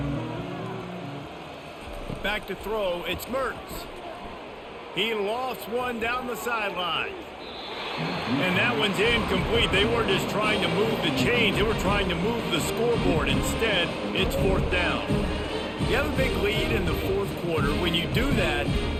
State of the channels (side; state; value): both; identical; correlation 1.00